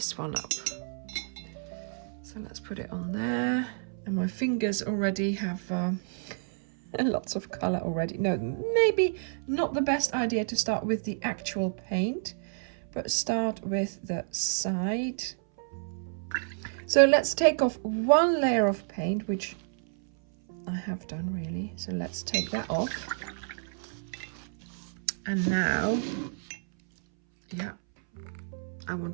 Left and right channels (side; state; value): left; silent; 58 dB below the other